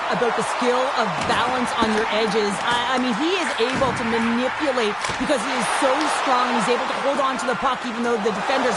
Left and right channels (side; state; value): both; identical; correlation 1.00